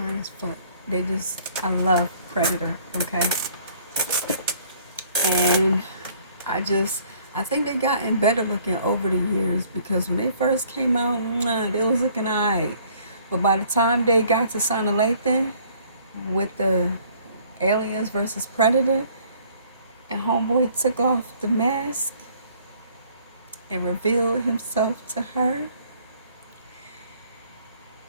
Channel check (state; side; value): inverted; both; correlation -0.58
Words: as fuck. I love Predator, okay? And I think they gotten better looking over the years because when they first came out, they was looking alright. But by the time they got to Sana Lathan with the Aliens versus Predator, and Homeboy took off the mask and revealed himself to her,